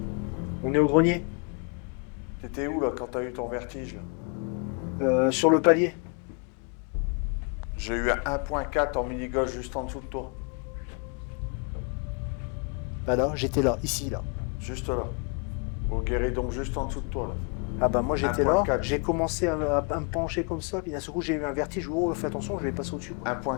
On est au grenier. t'étais où là quand t'as eu ton vertige là? Sur le palier. J'ai eu un 1.4 en mini-gauche juste en dessous de toi. Bah là, j'étais là, ici, là. Juste là. Au guéridon, juste en dessous de toi, là. Ah bah moi j'étais là, 1.4. j'ai commencé à me pencher comme ça, puis d'un seul coup j'ai eu un vertige, oh fais attention, je vais passer au-dessus. Quoi.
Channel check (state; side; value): quieter; right; 36.6 dB